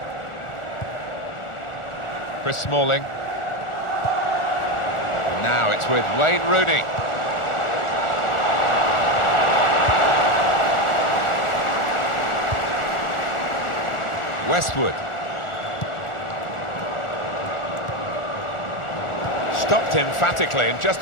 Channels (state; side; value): late; right; 1.4 ms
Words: Chris Smalling. Now it's with Wayne Rooney. Westwood. Stopped emphatically and